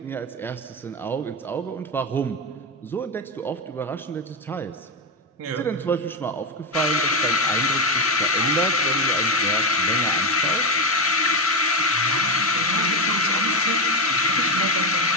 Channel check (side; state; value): both; normal; correlation 0.09